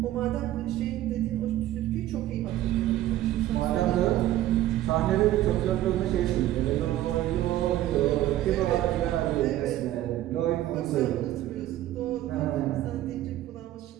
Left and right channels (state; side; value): quieter; left; 14.0 dB